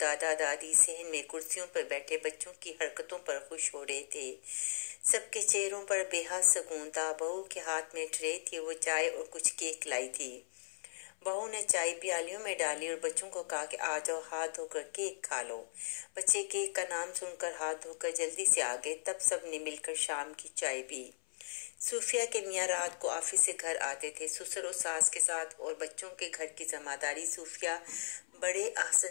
दादी सहन में कुर्सियों पर बैठे बच्चों की हरकतों पर खुश हो रहे थे। सबके चेहरों पर बेहद सुकून था। बहू के हाथ में ट्रे थी, वो चाय और कुछ केक लाई थी। बहू ने चाय प्यालियों में डाली और बच्चों को कहा कि आ जाओ, हाथ धोकर केक खा लो। बच्चे केक का नाम सुनकर हाथ धोकर जल्दी से आ गए। तब सब ने मिलकर शाम की चाय पी। सूफिया के मियाँ रात को ऑफिस से घर आते थे, ससुर और सास के साथ, और बच्चों के घर की जिम्मेदारी सूफिया बड़े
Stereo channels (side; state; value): right; silent; 53 dB below the other